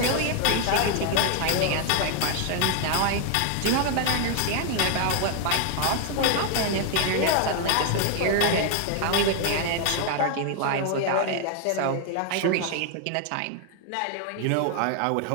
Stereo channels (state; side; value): different; both; correlation 0.00